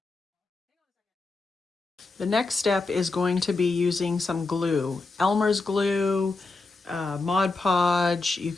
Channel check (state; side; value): quieter; right; 3.6 dB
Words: The next step is going to be using some glue. Elmer's glue, Mod Podge, you